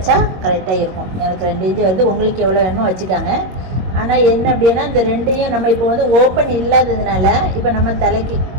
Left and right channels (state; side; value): late; left; 22 ms